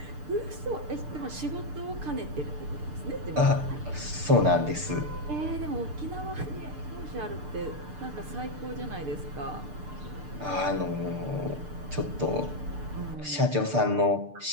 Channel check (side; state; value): left; late; 6.7 ms